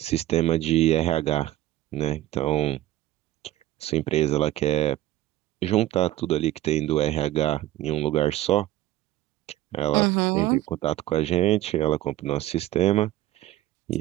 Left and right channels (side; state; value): left; quieter; 14.8 dB